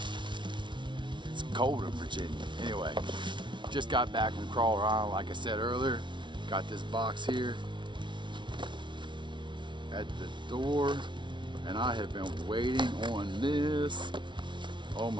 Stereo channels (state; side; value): late; left; 0.24 ms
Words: it's cold in Virginia. Anyway, just got back from Crawler Island, like I said earlier. Got this box here at the door, and I have been waiting on this. Oh